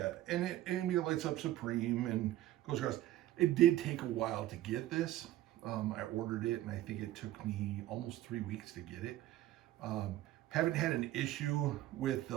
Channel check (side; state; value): left; quieter; 14.4 dB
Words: and it lights up Supreme and goes across. It did take a while to get this. I ordered it, and I think it took me almost 3 weeks to get it. Haven't had an issue with the